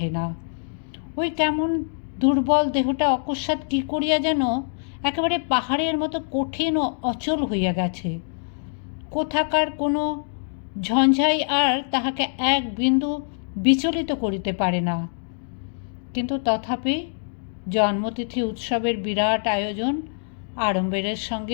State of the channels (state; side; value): silent; right; digital silence